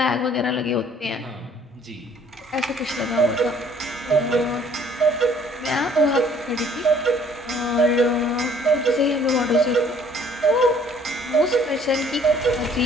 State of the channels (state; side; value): normal; both; correlation 0.58